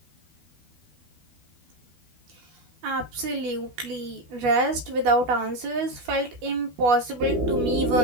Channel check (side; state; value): left; late; 12 ms